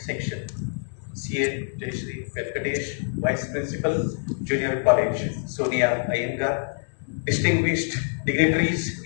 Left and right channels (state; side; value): silent; right; digital silence